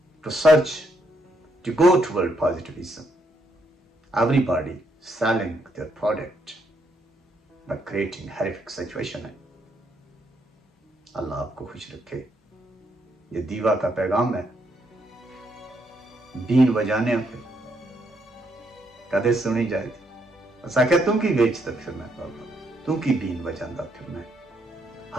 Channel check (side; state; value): both; normal; correlation 0.75